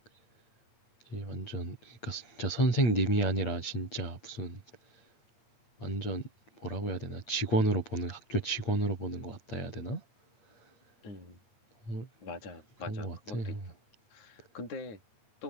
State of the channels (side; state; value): right; late; 8.7 ms